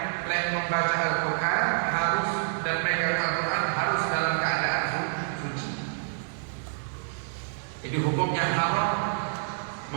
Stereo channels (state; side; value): silent; left; digital silence